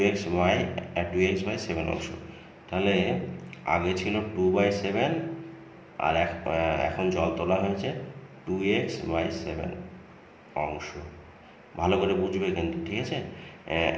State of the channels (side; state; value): both; identical; correlation 1.00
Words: অংশ। তাহলে আগে ছিল 2/7 আর এখন জল তোলা হয়েছে 2x/7 অংশ। ভালো করে বুঝবে কিন্তু, ঠিক আছে।